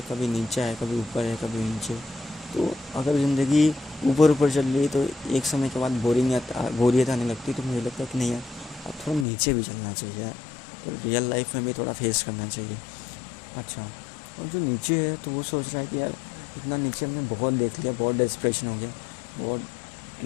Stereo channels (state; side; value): drops out; right; at 9.2 s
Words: कभी नीचा है, कभी ऊपर है, कभी नीचे। तो अगर ज़िंदगी ऊपर ऊपर चल रही है तो एक समय के बाद बोरियत आने लगती है, तो मुझे लगता है कि नहीं यार, अब थोड़ा नीचे भी चलना चाहिए यार, तो रियल लाइफ में भी थोड़ा फेस करना चाहिए। अच्छा, और जो नीचे है तो वो सोच रहा है कि यार इतना नीचे हमने बहुत देख लिया, बहुत डेस्परेशन हो गया, बहुत